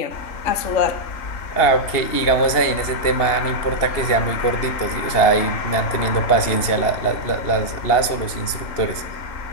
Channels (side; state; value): right; late; 2.8 ms